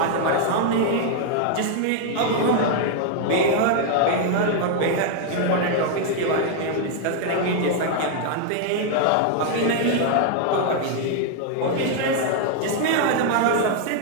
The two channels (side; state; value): both; different; correlation 0.00